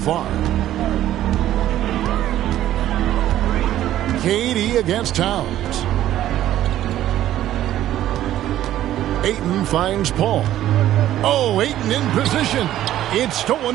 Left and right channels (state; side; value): quieter; left; 12.9 dB